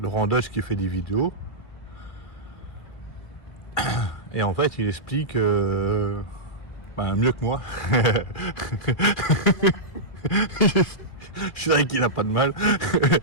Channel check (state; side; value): late; right; 2.4 ms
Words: Laurent Deutsch qui fait des vidéos. Et en fait, il explique mieux que moi. C'est vrai qu'il a pas de mal.